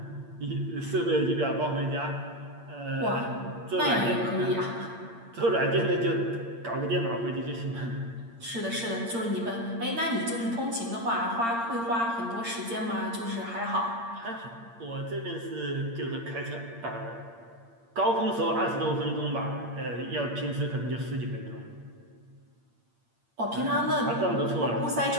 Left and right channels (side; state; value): left; late; 8.7 ms